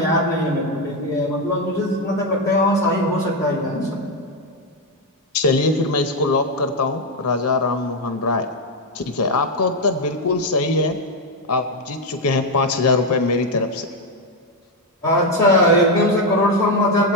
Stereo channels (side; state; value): both; normal; correlation 0.05